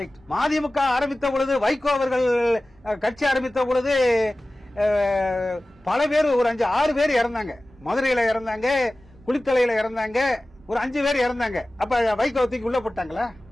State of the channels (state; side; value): normal; both; correlation 0.97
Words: மதிமுக ஆரம்பித்த பொழுது, வைகோ அவர்கள் கட்சி ஆரம்பித்த பொழுது பல பேர், ஒரு 5-6 பேர் இறந்தாங்க. மதுரையில இறந்தாங்க, குளித்தலையில இறந்தாங்க, ஒரு 5 பேர் இறந்தாங்க. அப்ப வைகோ தூக்கி உள்ள போட்டாங்களா?